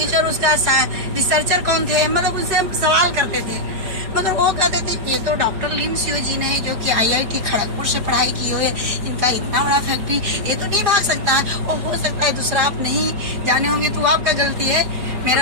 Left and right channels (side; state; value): left; late; 5.1 ms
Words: उसका रिसर्चर कौन थे, मतलब उनसे हम सवाल करते थे। मगर वो कहते थे ये तो डॉक्टर लिम सियो जी ने जो कि IIT खड़गपुर से पढ़ाई की हो, इनका इतना बड़ा फैक्ट्री, ये तो नहीं भाग सकता है। और हो सकता है दूसरा आप नहीं जाने होंगे तो आपका गलती है,